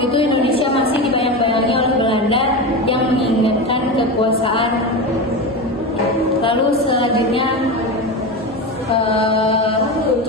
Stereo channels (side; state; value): both; normal; correlation 0.21